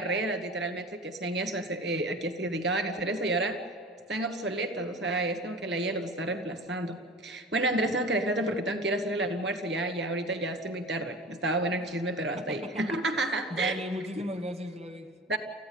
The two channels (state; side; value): normal; both; correlation 0.37